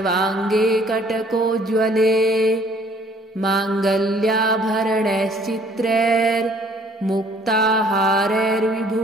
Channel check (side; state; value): both; normal; correlation 0.58